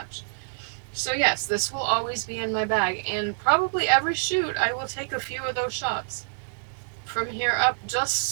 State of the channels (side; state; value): left; silent; digital silence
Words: So yes, this will always be in my bag, and probably every shoot I will take a few of those shots from here up, just